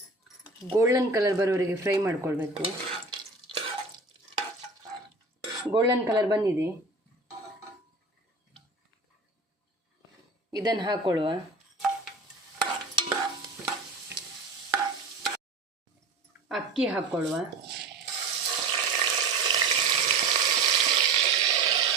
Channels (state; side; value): quieter; left; 3.5 dB